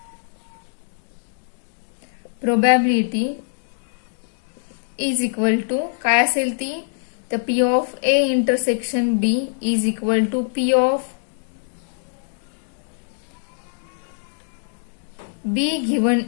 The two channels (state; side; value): silent; right; digital silence